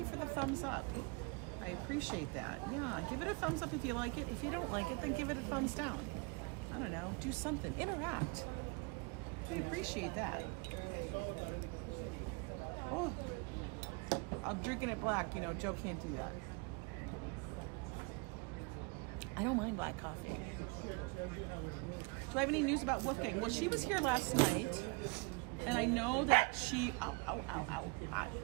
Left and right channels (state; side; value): quieter; left; 30.4 dB